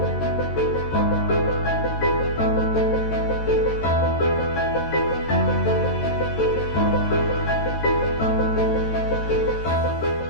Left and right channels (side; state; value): right; late; 13 ms